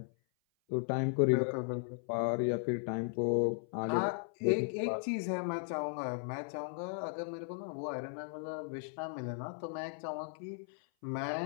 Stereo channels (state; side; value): silent; right; 54 dB below the other